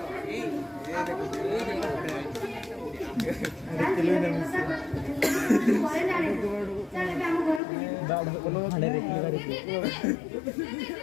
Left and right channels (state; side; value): drops out; right; at 7.6 s